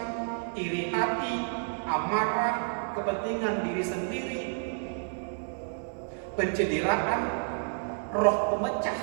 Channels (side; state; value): left; silent; digital silence